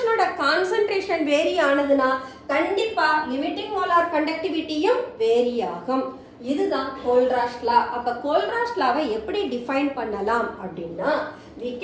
ஓட concentration vary ஆனதுனா கண்டிப்பா limiting molar conductivityயும் vary ஆகும். இதுதான் கோல்ராஷ் லா. அப்ப கோல்ராஷ் லாவை எப்படி டிஃபைன் பண்ணலாம் அப்படின்னா we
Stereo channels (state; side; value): identical; both; correlation 1.00